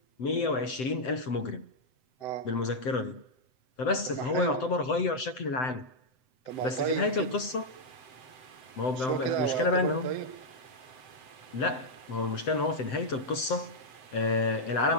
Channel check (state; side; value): late; right; 7.8 ms